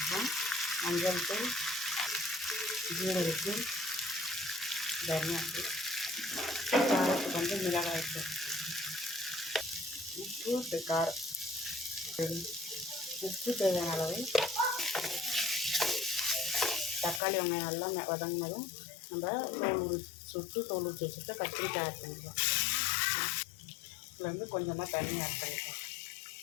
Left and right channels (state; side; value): drops out; right; at 17.2 s